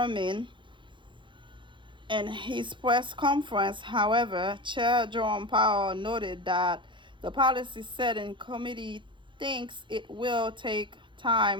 In his press conference, however, Chair Jerome Powell noted that the policy setting committee thinks it will take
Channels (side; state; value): left; late; 0.23 ms